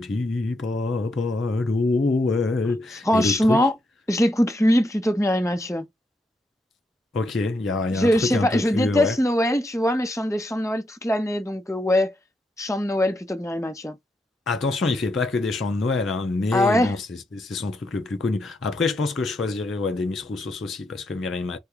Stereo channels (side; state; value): both; normal; correlation 0.81